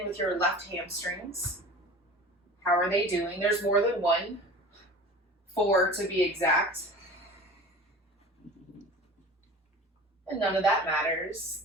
with your left hamstrings. How are they doing? There's more than one. 4 to be exact. And none of that matters.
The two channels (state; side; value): normal; both; correlation 0.39